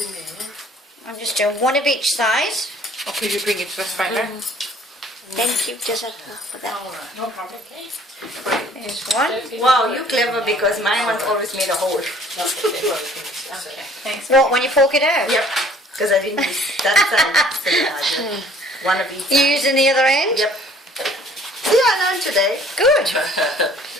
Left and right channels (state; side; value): normal; both; correlation 0.55